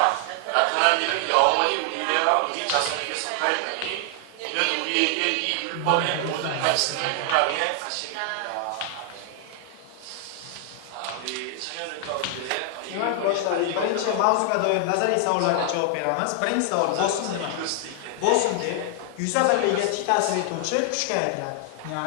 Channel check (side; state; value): both; different; correlation 0.00